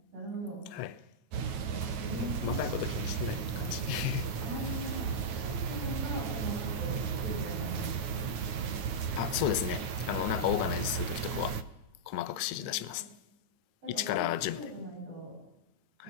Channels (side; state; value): left; late; 9.3 ms